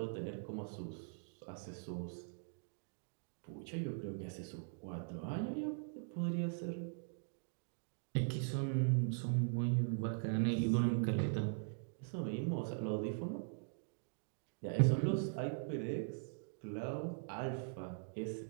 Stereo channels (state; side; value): silent; left; digital silence